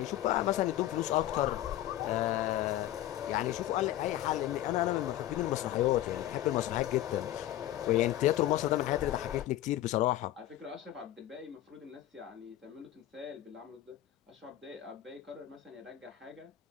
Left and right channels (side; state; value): right; quieter; 13.7 dB